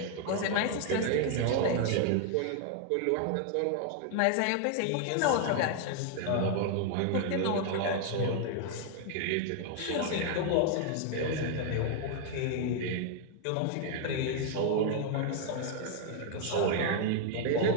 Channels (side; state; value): both; different; correlation 0.00